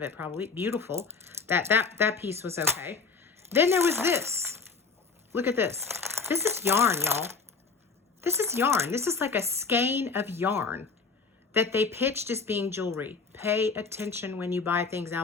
probably. Beautiful. That piece was okay. Then there was this. Look at this. This is yarn, y'all. This is yarn. This is like a skein of yarn that they pitched as being jewelry. Pay attention when you buy things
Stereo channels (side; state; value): right; quieter; 4.7 dB